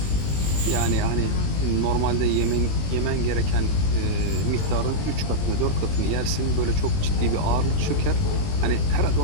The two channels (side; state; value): right; late; 20 ms